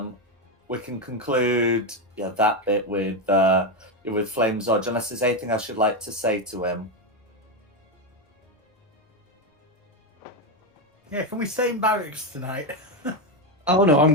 conclude that bit with Flame Zodge, unless there's anything I should like to say to him. Yeah, can we stay in barracks tonight? Oh no,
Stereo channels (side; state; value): both; normal; correlation 0.08